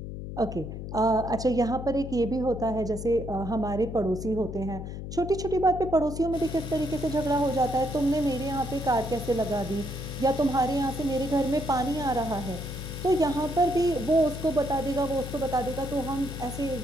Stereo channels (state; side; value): noise; left; hum, 8 dB below the sound